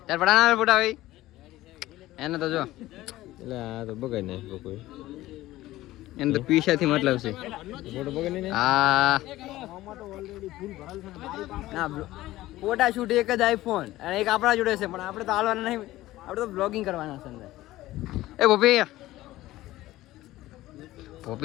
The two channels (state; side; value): quieter; right; 16.4 dB